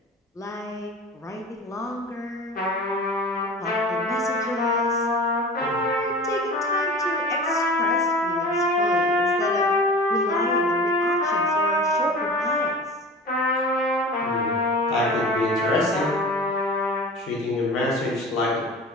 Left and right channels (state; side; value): normal; both; correlation 0.37